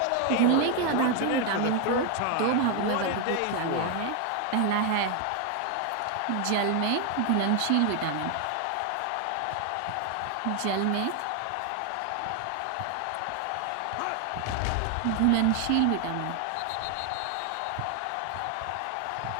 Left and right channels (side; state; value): both; different; correlation 0.01